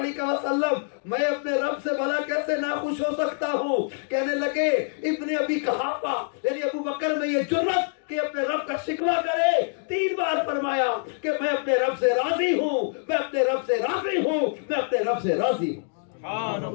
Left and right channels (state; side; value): silent; right; 61 dB below the other